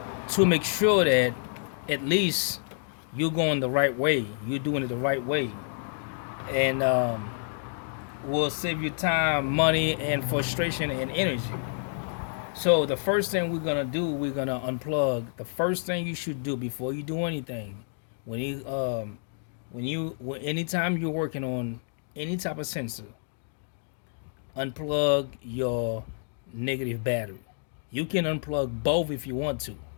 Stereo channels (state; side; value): silent; right; digital silence